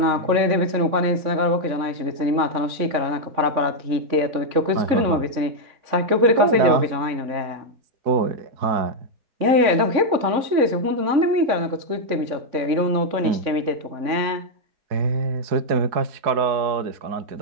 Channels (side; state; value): left; late; 3.6 ms